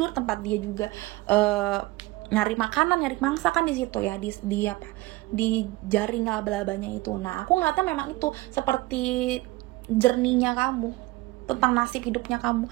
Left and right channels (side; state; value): left; quieter; 20.1 dB